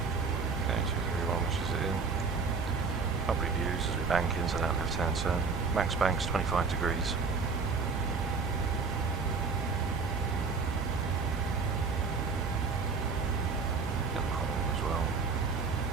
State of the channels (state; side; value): quieter; left; 4.8 dB